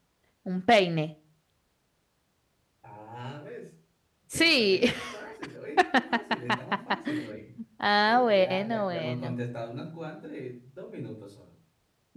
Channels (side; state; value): both; identical; correlation 1.00